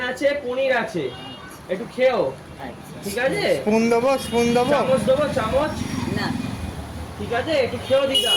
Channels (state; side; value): identical; both; correlation 1.00